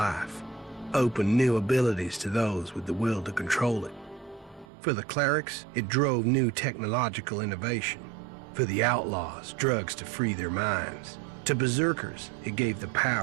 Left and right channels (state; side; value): drops out; left; at 4.7 s